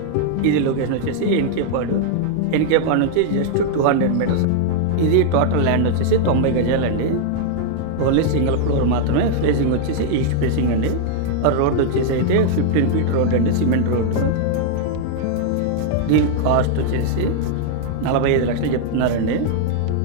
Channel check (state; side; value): different; both; correlation -0.01